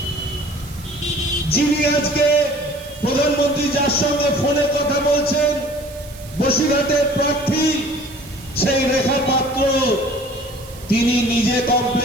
যিনি আজকে প্রধানমন্ত্রী যার সঙ্গে ফোনে কথা বলছেন, বসিরহাটের প্রার্থী সেই রেখা পাত্র, তিনি নিজে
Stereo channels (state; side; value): noise; right; hiss, 19 dB below the sound